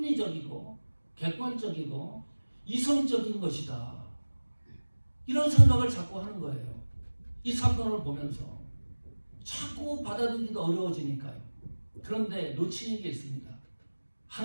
객관적이고 이성적인 것이다. 이런 생각을 자꾸 하는 거예요. 이 사건을 보면서 자꾸 받아들이기도 어려워지니까요. 그런데 놓치는 게 있습니다.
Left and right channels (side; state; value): both; inverted; correlation -1.00